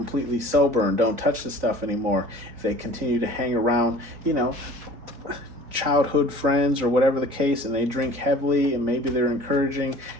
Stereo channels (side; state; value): left; late; 3.9 ms